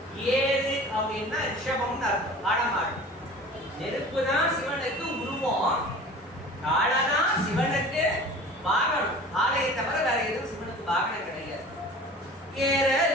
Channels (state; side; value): normal; both; correlation 0.41